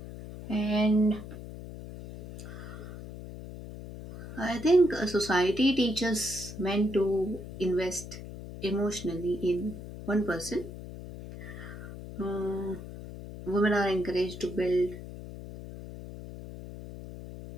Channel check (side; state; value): left; noise; hum, 12 dB below the sound